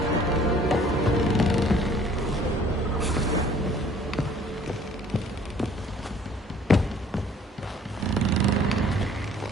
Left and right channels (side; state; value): both; normal; correlation 0.55